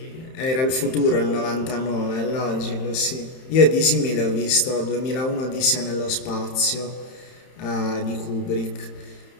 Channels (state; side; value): late; right; 31 ms